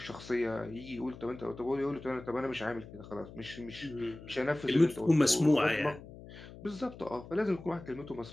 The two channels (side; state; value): left; noise; hum, 16 dB below the sound